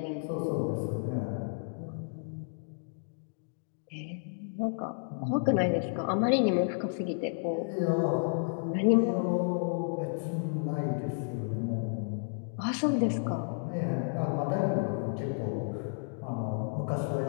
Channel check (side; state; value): right; silent; digital silence